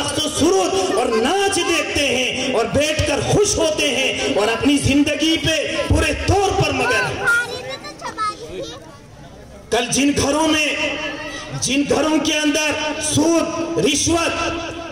و سرود اور ناچ دیکھتے ہیں اور بیٹھ کر خوش ہوتے ہیں اور اپنی زندگی پہ پورے طور پر مگر۔ کل جن گھروں کے اندر سود، رشوت،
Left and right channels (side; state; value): both; identical; correlation 1.00